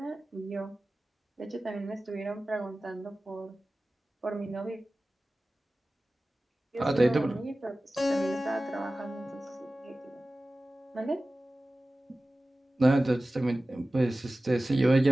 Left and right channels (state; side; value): normal; both; correlation 0.97